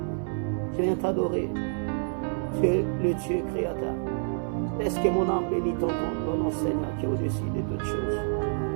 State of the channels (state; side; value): silent; left; digital silence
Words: Je viens t'adorer. Tu es le Dieu créateur. Laisse que mon âme bénisse ton nom, Seigneur, qui est au-dessus de toutes choses.